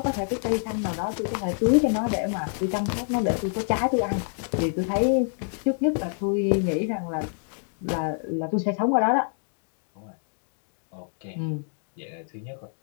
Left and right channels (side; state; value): right; silent; 60 dB below the other